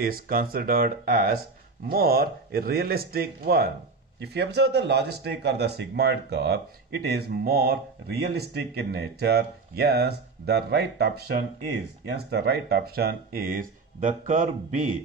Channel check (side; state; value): left; quieter; 4.2 dB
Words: considered as more realistic one? If you observe the logistic or the sigmoid curve, it is more realistic in nature. Yes, the right option is, the curve